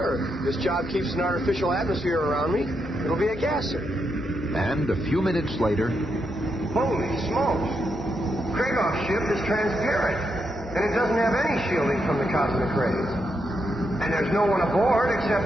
This job keeps an artificial atmosphere around me. It'll be a gasser. And a few minutes later... Holy smokes! Kragoff's ship is transparent, and it doesn't have any shielding from the cosmic rays. And there's no one aboard except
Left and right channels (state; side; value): normal; both; correlation 0.82